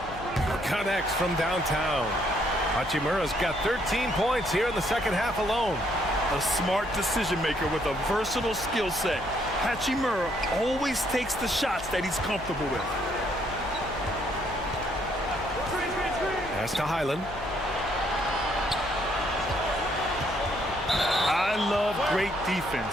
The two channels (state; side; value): noise; left; hum, 15 dB below the sound